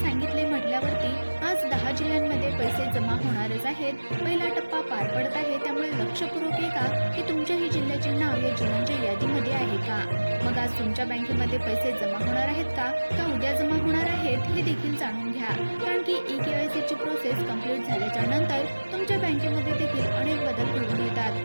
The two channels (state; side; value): inverted; both; correlation -1.00